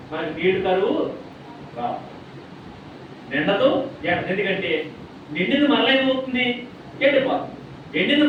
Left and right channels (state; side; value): identical; both; correlation 1.00